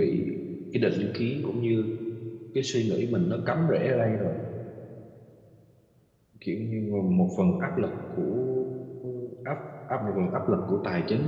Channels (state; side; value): identical; both; correlation 1.00